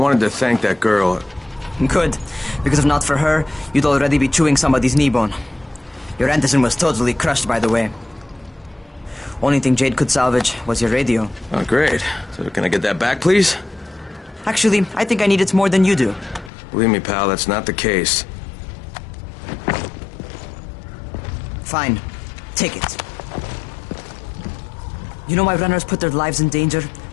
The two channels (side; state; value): right; drops out; at 16.5 s